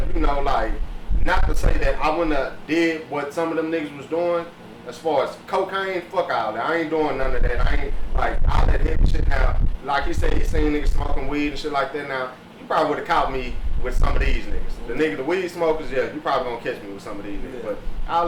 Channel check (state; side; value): identical; both; correlation 1.00